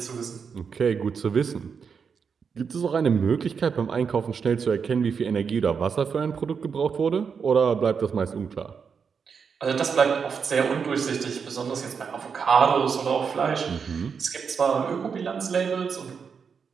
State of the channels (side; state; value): left; quieter; 6.2 dB